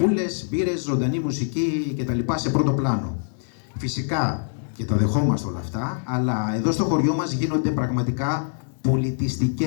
μπύρες, ζωντανή μουσική κτλ. Σε πρώτο πλάνο. Φυσικά, και τα δεχόμαστε όλα αυτά, αλλά εδώ στο χωριό μας γίνονται πραγματικά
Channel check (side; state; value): right; silent; digital silence